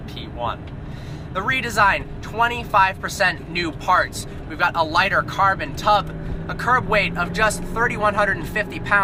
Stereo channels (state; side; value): identical; both; correlation 1.00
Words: P1. The redesign, 25% new parts. We've got a lighter carbon tub, a curb weight of just 3,150